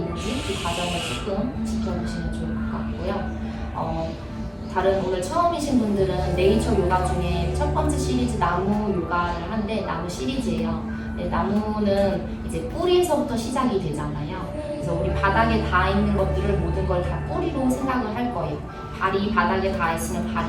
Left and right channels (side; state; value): both; identical; correlation 1.00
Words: 그 과정을 조금 지켜보시면 좋을 것 같고요. 다른 오늘 처음이신 분들은 네이처 요가 중에 첫 번째 시리즈 나무 요가를 한데 나무 시리즈예요. 네, 나무는 이제 뿌리에서부터 시작이 되잖아요. 그래서 우리 바닥에 닿아 있는 것들을 모든 걸 다 뿌리로 생각을 할 거예요. 발이 바닥에 닿아 있으면